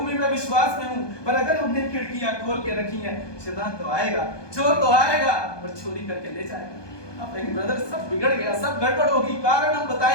में मैं विश्वास में हूं, पर अगर हमने खिड़कियां खोल के रखी हैं शैतान तो आएगा, चोर तो आएगा और चोरी करके ले जाएगा। आप कहेंगे ब्रदर सब बिगड़ गया, सब गड़बड़ होगी, कारण हम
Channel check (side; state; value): right; late; 1.2 ms